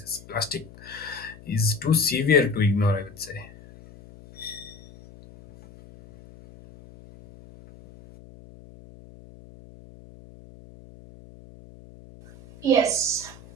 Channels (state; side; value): noise; left; hum, 21 dB below the sound